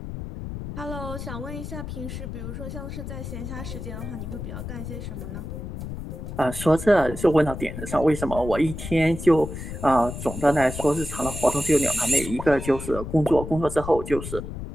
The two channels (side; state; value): left; noise; rumble, 8 dB below the sound